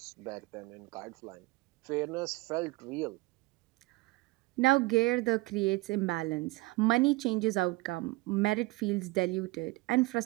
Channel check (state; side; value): quieter; left; 21.7 dB